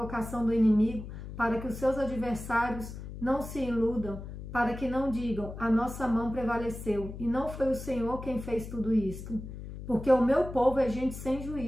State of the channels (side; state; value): left; noise; hum, 10 dB below the sound